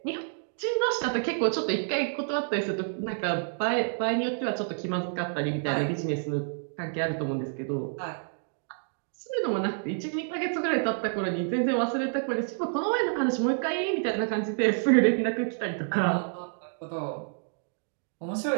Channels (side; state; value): left; silent; digital silence